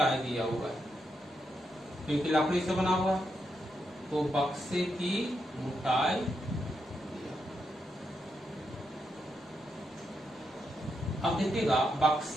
दिया हुआ है, क्योंकि लकड़ी से बना हुआ है, तो बक्से की मोटाई, अब देखिएगा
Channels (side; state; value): both; normal; correlation 0.83